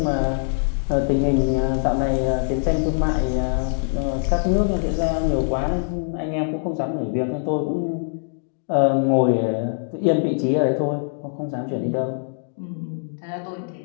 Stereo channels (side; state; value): right; silent; digital silence